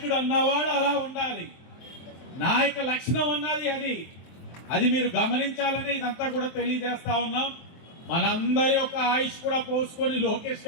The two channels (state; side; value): late; right; 23 ms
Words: అన్నవాడు అలా ఉండాలి, నాయక లక్షణం అన్నది అది మీరు గమనించాలని ఇదంతా కూడా తెలియజేస్తా ఉన్నాం. మనందరి యొక్క ఆయుష్ కూడా పోసుకొని లోకేష్